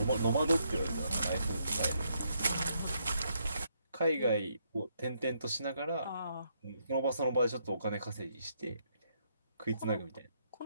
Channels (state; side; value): inverted; both; correlation -0.75